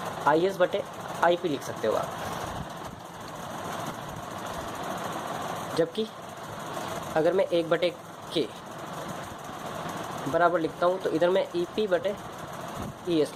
IS बटे IP लिख सकते हो आप, जबकि अगर मैं 1/K बराबर लिखता हूँ तो इधर में EP बटे ES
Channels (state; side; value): identical; both; correlation 1.00